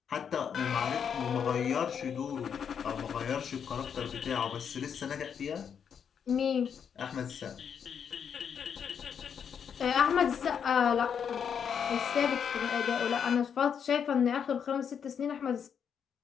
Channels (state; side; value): quieter; right; 7.5 dB